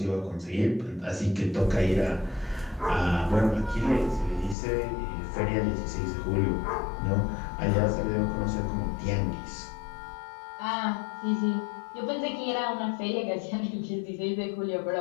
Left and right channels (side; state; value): right; drops out; at 4.5 s